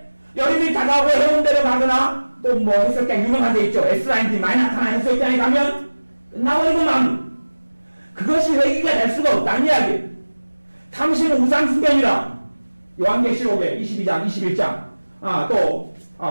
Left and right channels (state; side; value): inverted; both; correlation -1.00